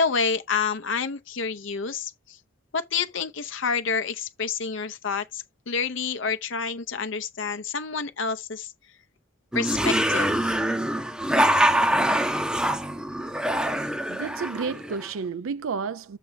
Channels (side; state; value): both; normal; correlation 0.43